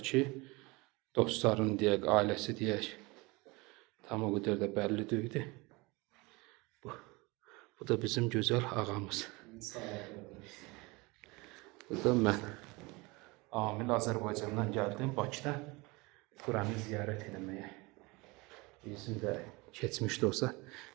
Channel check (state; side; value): quieter; left; 24.8 dB